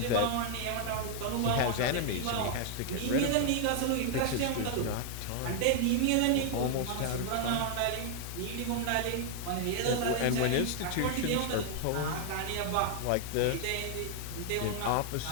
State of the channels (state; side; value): different; both; correlation 0.00